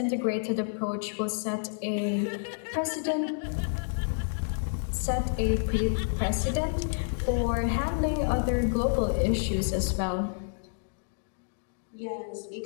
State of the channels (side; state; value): right; silent; digital silence